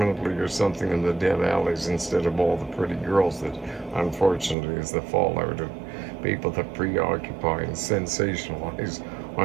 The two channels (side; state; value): left; drops out; at 4.5 s